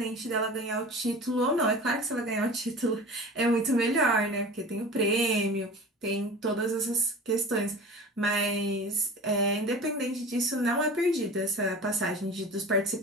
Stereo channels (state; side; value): normal; both; correlation 0.37